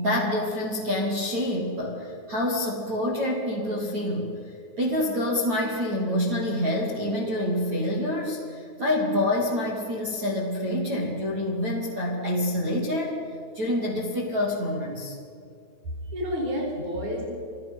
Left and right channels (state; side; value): late; left; 9.0 ms